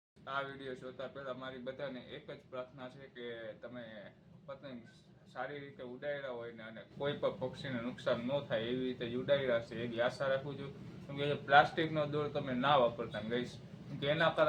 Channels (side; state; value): both; identical; correlation 1.00